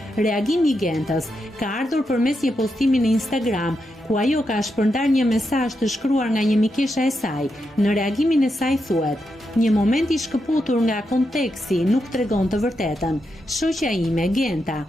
Reagimi i Gentës ka ardhur përmes një postimi në Instagram, ku ajo ka shpërndar një mesazh të shkruar nga një mikesha e saj. Në reagimin e saj thuhet: "Një moment i shkëputur nga konteksti nuk tregon të vërtetën. Shoqja ime, Genta,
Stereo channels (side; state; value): both; normal; correlation 0.85